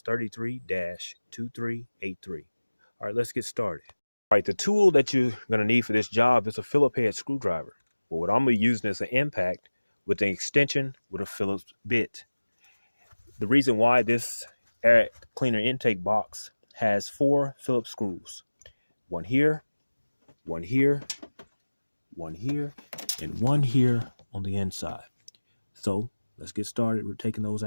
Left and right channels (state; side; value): inverted; both; correlation -1.00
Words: 33-2383. All right, let's get started. All right, the tool that you're going to need for this job is a Phillips head screwdriver. But what I'm going to be using is an impact with an extension with a Phillips bit. The reason why this air cleaner intake box has 4 Phillips screws. One here, one here, one here, and one here on the inside. So let's get started. We're taking those